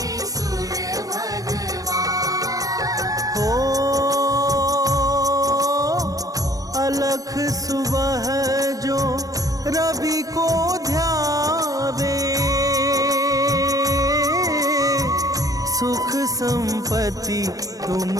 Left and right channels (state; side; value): late; left; 0.17 ms